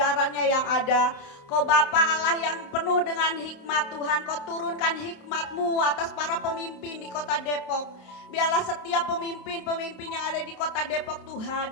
yang ada. Kau Bapa Allah yang penuh dengan hikmat Tuhan, Kau turunkan hikmat-Mu atas para pemimpin di kota Depok. Biarlah setiap pemimpin-pemimpin yang ada di kota Depok Tuhan,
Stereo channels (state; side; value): late; right; 27 ms